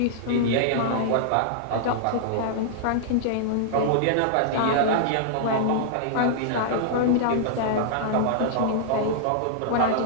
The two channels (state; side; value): different; both; correlation -0.02